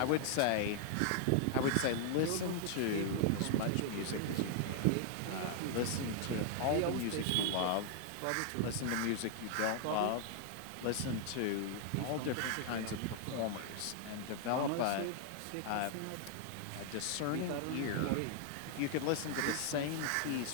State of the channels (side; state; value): both; different; correlation -0.01